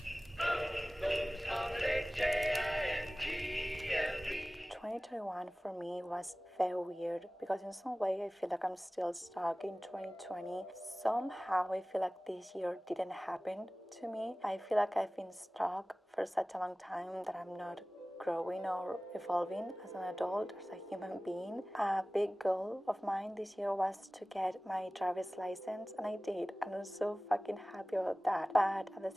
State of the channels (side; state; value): both; normal; correlation 0.98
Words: for me was very weird because in some way I feel like I'm still stuck in 2020. Somehow I feel like this year didn't happen to me. I feel like I've been stuck for such a long time that I'm not growing or evolving as an adult, as a human being. A big goal of mine this year was to get my driver's license, and I did, and I'm so fucking happy about that. But at the